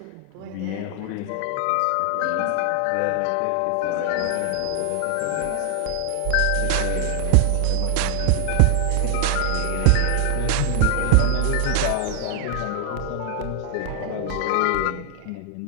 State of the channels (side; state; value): both; different; correlation 0.00